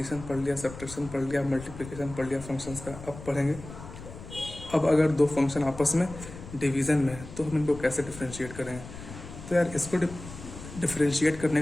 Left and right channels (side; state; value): left; noise; rumble, 13 dB below the sound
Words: पढ़ लिया, सब्ट्रैक्शन पढ़ लिया, मल्टीप्लिकेशन पढ़ लिया फंक्शंस का। अब पढ़ेंगे अब अगर दो फंक्शन आपस में डिवीज़न में है तो हम इनको कैसे डिफ्रेंशिएट करेंगे। तो यार इसको डिफ्रेंशिएट करने